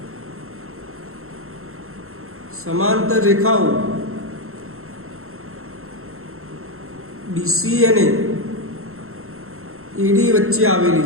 સમાંતર રેખાઓ BC અને AD વચ્ચે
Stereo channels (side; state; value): left; late; 0.62 ms